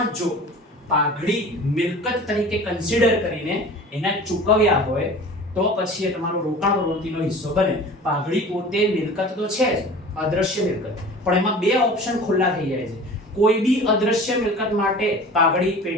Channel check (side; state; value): both; normal; correlation 0.40